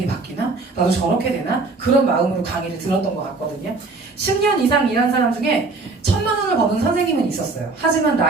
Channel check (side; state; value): left; quieter; 3.7 dB